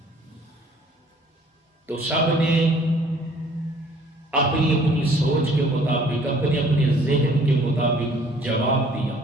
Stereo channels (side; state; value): both; normal; correlation 0.56